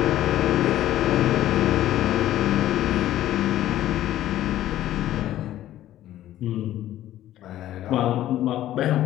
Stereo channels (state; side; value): quieter; right; 13.3 dB